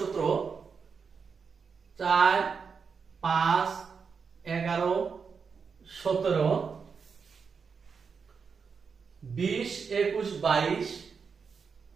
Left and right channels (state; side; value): quieter; left; 5.7 dB